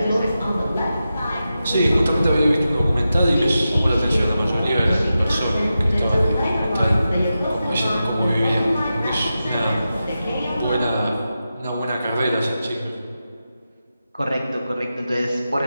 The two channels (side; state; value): both; inverted; correlation -0.91